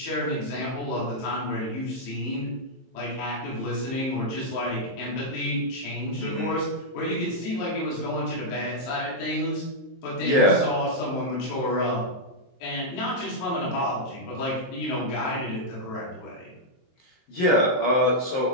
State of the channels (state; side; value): late; right; 23 ms